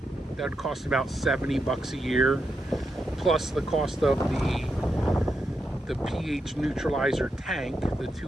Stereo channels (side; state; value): both; normal; correlation 0.84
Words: would cost about $70 a year, plus the cost of the pH neutralizer tank. The